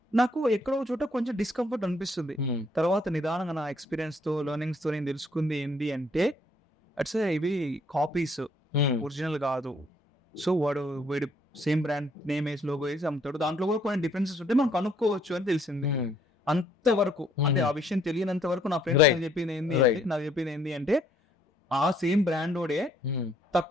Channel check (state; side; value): normal; both; correlation 0.66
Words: నాకు ఎక్కడో చోట కొంచెం డిస్కంఫర్ట్ అనిపిస్తుంది. తర్వాత నిదానంగా నా ఎక్స్పీరియన్స్ తో లెర్నింగ్స్ తో నేను తెలుసుకుంది ఏంటి అంటే, అట్స్ ఇవి కాపీస్, ఒరిజినల్ కాదు. సో వీడు సేమ్ బ్రాండ్ నేమ్ వేసి లోగో వేసి అమ్ముతాడు, దాంట్లో కూడా కొన్ని డిఫరెన్సెస్ ఉంటే మనం కనుక్కోవచ్చు అని తెలిసింది. అంతవరకు అంటే ఆ విషయం తెలియనంత వరకు నా ఫ్రెండ్స్ నాకు చెప్పింది ఏంటి అంటే, ఆ సేమ్ బ్రాండ్ ఓడే